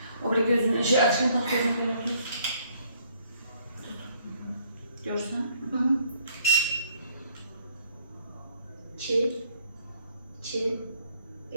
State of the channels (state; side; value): inverted; both; correlation -0.65